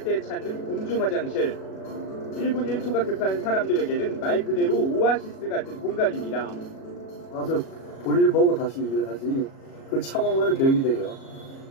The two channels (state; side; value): late; right; 37 ms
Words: 때 찾는 공중 화장실. 1분 1초가 급한 사람들에게는 말 그대로 오아시스 같은 공간입니다. 와서 볼일 보고 다시 일하지. 그걸 참으면 벽이 돼요.